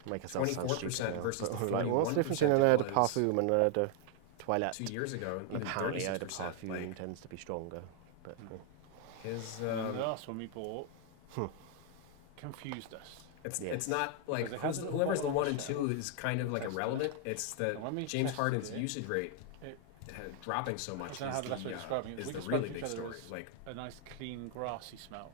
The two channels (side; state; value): both; different; correlation 0.00